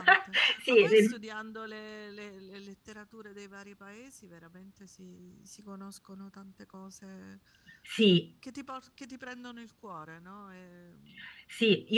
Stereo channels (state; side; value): identical; both; correlation 1.00